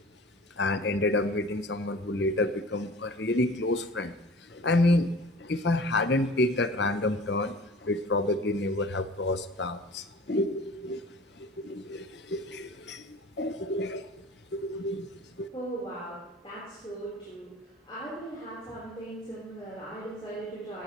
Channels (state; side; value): normal; both; correlation 0.43